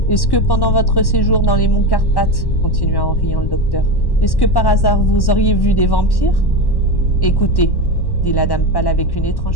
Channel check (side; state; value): right; late; 1.1 ms